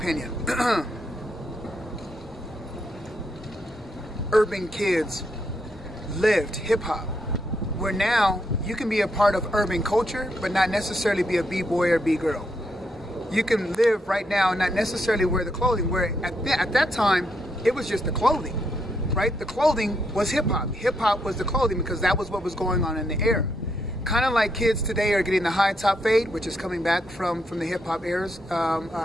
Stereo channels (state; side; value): normal; both; correlation 0.78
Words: urban kids lived hip-hop, where now you can be a part of urban culture but not necessarily be a b-boy or b-girl. You can live right now and not necessarily wear the clothing, where at that time it was just the clothing, right? The clothing was hip-hop. Hip-hop was the clothing because that was what was going on in the era. Kind of like kids today are getting the high top fade, which is coming back from the hip-hop eras